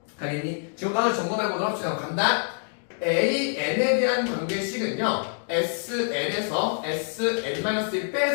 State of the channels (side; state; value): right; silent; digital silence